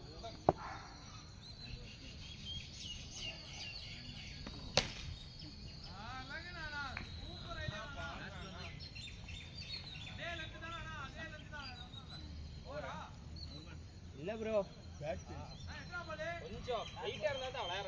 இல்ல ப்ரோ கொஞ்சம் ஹைட்டாக இருந்தால் தான்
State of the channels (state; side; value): identical; both; correlation 1.00